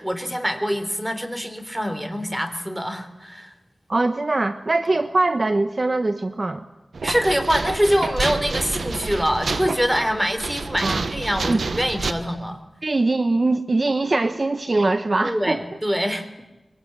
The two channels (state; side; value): normal; both; correlation 0.98